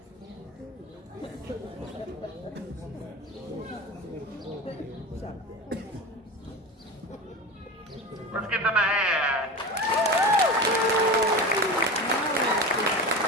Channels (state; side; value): normal; both; correlation 0.28